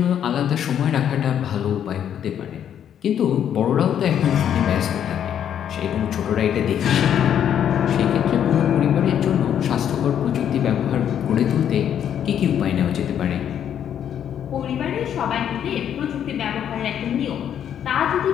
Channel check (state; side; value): quieter; right; 9.4 dB